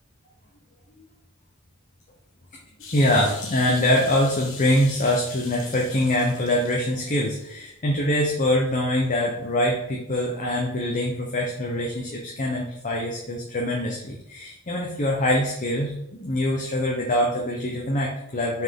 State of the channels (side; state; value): both; normal; correlation 0.31